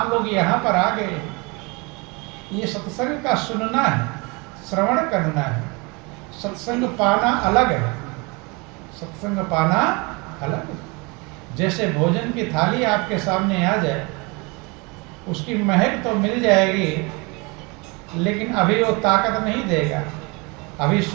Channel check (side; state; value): left; quieter; 28.3 dB